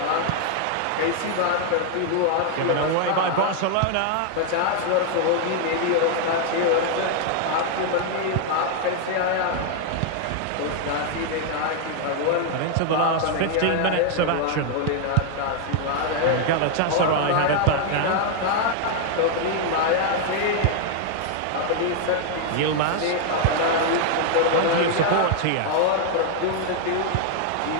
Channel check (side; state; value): both; different; correlation 0.00